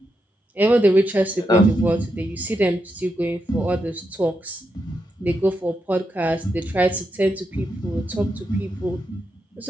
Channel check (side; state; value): both; normal; correlation 0.84